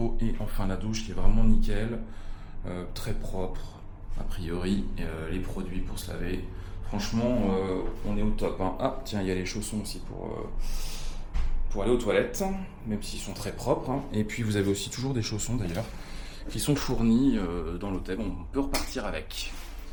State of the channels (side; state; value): both; identical; correlation 1.00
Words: et enfin la douche qui est vraiment nickel, très propre a priori. Les produits pour se laver. Franchement, on est au top. Hein. Ah, tiens, il y a les chaussons aussi pour aller aux toilettes, même s'ils sont très propres. Hein. Et puis, vous avez aussi toujours des chaussons, d'ailleurs, qui sont fournis dans l'hôtel. On peut repartir avec.